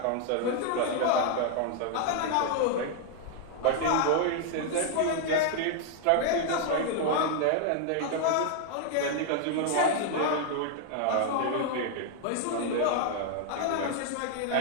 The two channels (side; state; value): both; different; correlation 0.00